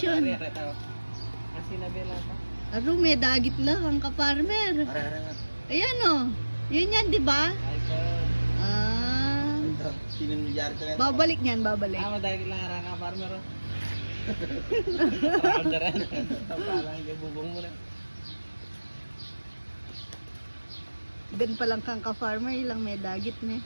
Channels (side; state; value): both; inverted; correlation -1.00